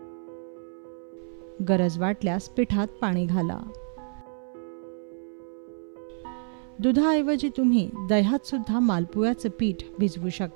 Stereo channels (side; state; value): left; silent; 60 dB below the other